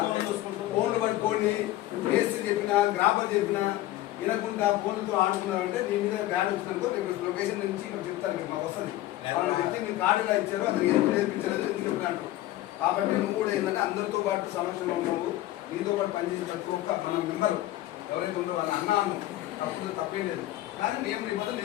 ఫోన్లు పట్టుకొని మేస్త్రి చెప్పినా గ్రాఫర్ చెప్పినా వినకుండా ఫోన్లతో ఆడుకున్నామంటే నీ మీద బ్యాడ్ వచ్చిందనుకో రేపు లొకేషన్ నుంచి ఇక్కడ చెప్తారు కదా మాకు వస్తుంది. వాళ్ళ వ్యక్తి మీరు కార్డు ఎలా ఇచ్చారో అతనికి ఎందుకు నేర్పించలేదు ఎందుకు చెప్పినట్టు. కాబట్టి నువ్వు కూడా ఏంటంటే అందరితో పాటు సమక్షంలో ఉన్నావు, నీతో పాటు పనిచేసి ప్రతి ఒక్క మన మెంబర్ ఎవరైతే ఉంటారో వాళ్ళ అన్నాను తప్పేం లేదు. కానీ నియమ నిబంధనలు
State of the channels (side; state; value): right; quieter; 15.4 dB